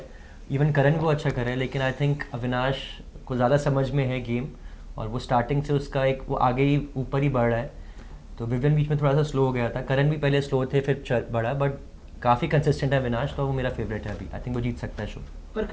इवन करण भी बहुत अच्छा कर रहे हैं, लेकिन आई थिंक अविनाश को ज़्यादा समझ में है गेम और वो स्टार्टिंग से उसका एक वो आगे ही ऊपर ही बढ़ रहा है। तो विवेन बीच में थोड़ा सा स्लो हो गया था, करण भी पहले स्लो थे फिर बढ़ा, बट काफ़ी कंसिस्टेंट है अविनाश, तो वो मेरा फेवरेट है अभी। आई थिंक वो जीत सकता है शो। पर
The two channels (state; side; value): identical; both; correlation 1.00